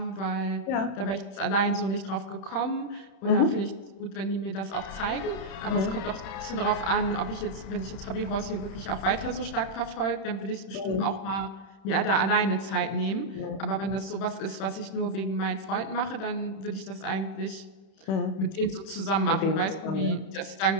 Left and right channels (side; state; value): right; late; 30 ms